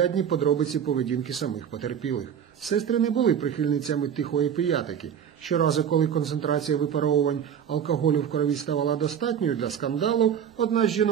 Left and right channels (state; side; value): quieter; left; 8.5 dB